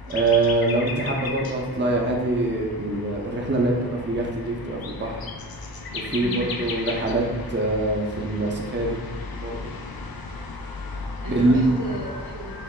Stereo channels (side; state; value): both; normal; correlation 0.37